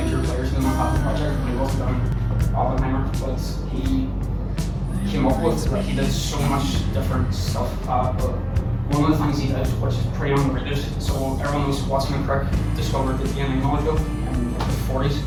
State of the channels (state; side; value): identical; both; correlation 1.00